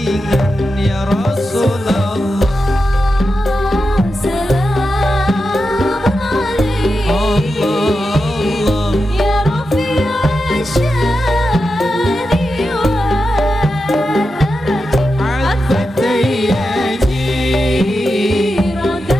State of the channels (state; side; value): normal; both; correlation 0.89